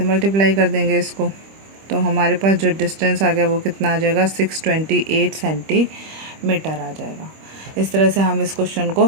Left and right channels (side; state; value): left; late; 25 ms